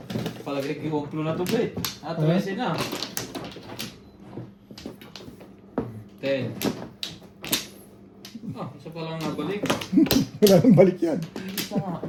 Palagay kiwumplo na to, Bet. 13 na. 10. Ah, isa pa lang nabalik. Wala nang balik yan. Isa nga.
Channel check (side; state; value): both; identical; correlation 1.00